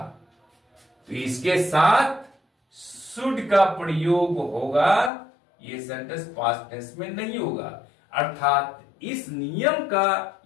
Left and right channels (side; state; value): right; drops out; at 5.1 s